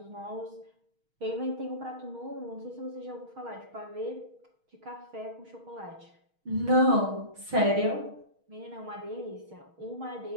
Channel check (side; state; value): left; late; 6.4 ms